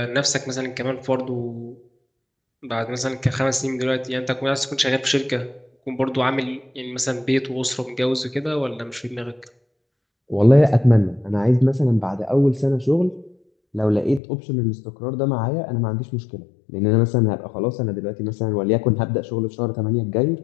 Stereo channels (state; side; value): drops out; right; at 14.2 s